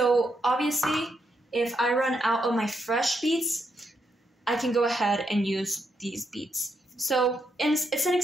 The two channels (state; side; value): normal; both; correlation 0.80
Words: obviously, if I run out of my fresh beets, I can go ahead and use these beets. So it's an